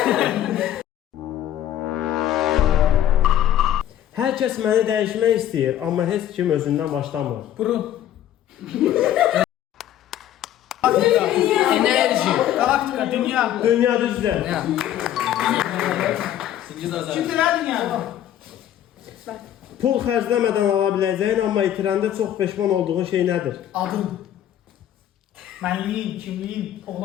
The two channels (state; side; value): quieter; right; 11.5 dB